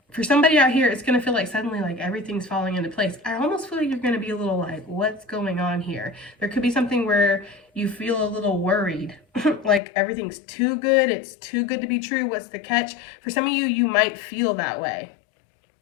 somebody out here, it's going to feel like suddenly like everything's falling into place. I almost feel like you're going to be a little like, what's going on here? There could be something where you feel a little worried, like everything's too good. It's too good to be true. What's the catch? For some of you, you might feel that way.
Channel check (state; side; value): drops out; right; at 9.8 s